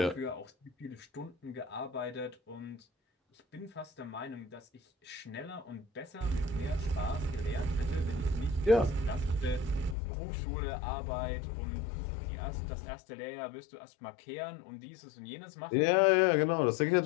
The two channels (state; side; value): drops out; right; at 10.0 s